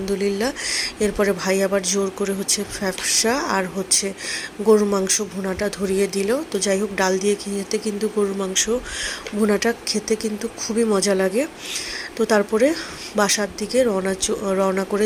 এরপরে ভাই আবার জোর করে ফ্যাপসা আর গরুর মাংস ভুনাটা ধরিয়ে দিল। তো যাই হোক, ডাল দিয়ে খেতে কিন্তু গরুর মাংস ভুনাটা খেতে কিন্তু খুবই মজা লাগে। তো তারপরে বাসার দিকে রওনা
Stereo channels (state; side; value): identical; both; correlation 1.00